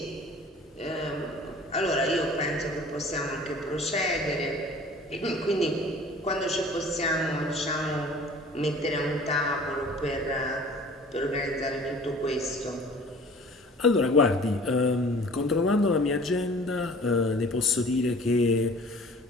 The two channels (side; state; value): both; normal; correlation 0.47